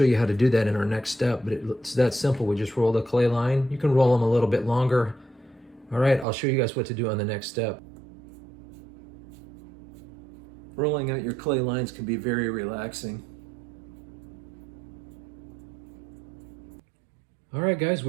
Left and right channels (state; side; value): drops out; left; at 6.2 s